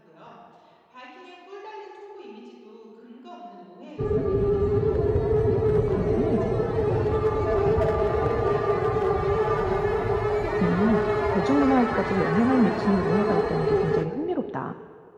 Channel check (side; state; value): both; identical; correlation 1.00